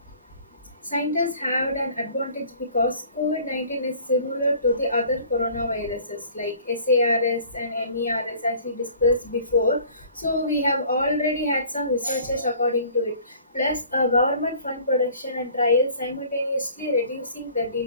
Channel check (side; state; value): both; inverted; correlation -0.50